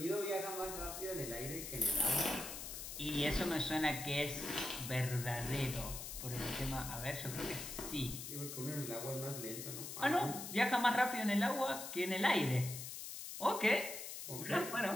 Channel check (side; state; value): left; noise; hiss, 8 dB below the sound